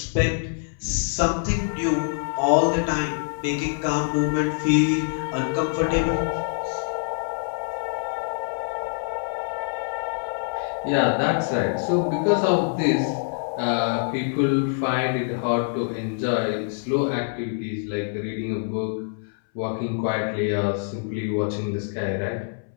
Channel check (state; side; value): silent; right; 61 dB below the other